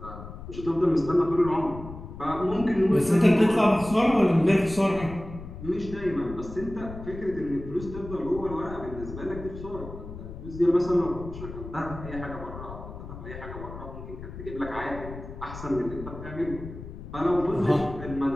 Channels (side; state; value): left; noise; rumble, 12 dB below the sound